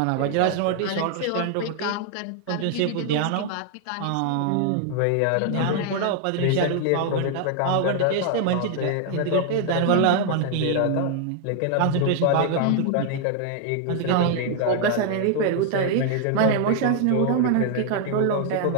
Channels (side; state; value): both; different; correlation 0.00